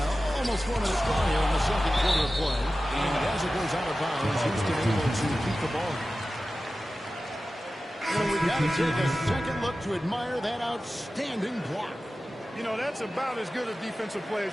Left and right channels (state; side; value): normal; both; correlation 0.95